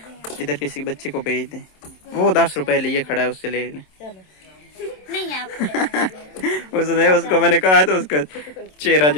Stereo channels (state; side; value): late; right; 27 ms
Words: इधर किसी बच्चे को भेज दें। वो 10 रुपए लिए खड़ा है, उससे ले लें। चलो नहीं आपको लगा देंगे। उसने उसको मैंने कहा तो उसका चेहरा